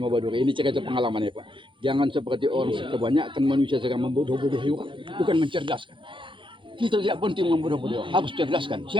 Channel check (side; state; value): left; late; 0.24 ms